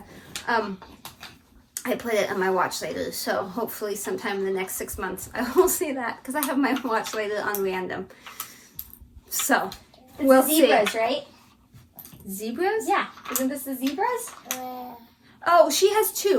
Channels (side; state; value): both; identical; correlation 1.00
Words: I put it on my watch later, so hopefully sometime in the next 6 months I will see that, because I have my watch later on random. So, we'll see. Zebras, right? Zebras? Yeah. Isn't this the zebras? Oh, she has